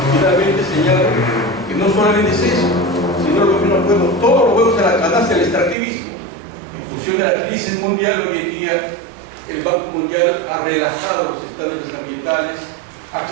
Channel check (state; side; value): drops out; left; at 5.8 s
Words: finalmente señalo que no solamente es eso, sino los juegos, todos los juegos de la canasta del extractivismo. En función de la crisis mundial, hoy en día el Banco Mundial ha relajado los estándares ambientales,